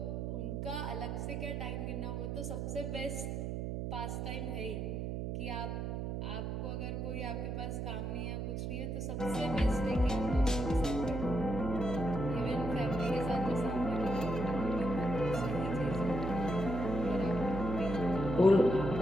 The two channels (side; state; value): right; noise; hum, 3 dB below the sound